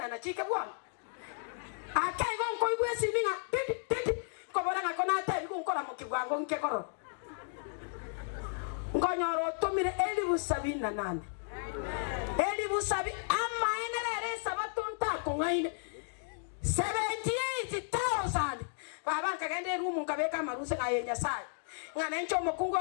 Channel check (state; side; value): silent; right; digital silence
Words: na chike bwana akai gonko igwe siminga titi kobora ngako na tabi kunkora mukigwango nkekoro ngonyoro tumire 78 ama enere sabatunta kungaine 78,000 baba kagende rumu kabeka maruse ngayenya sai ngana ncho mukungu